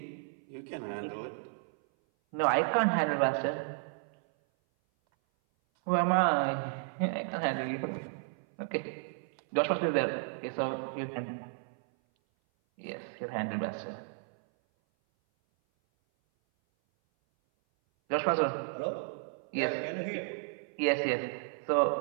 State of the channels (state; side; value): silent; left; 56 dB below the other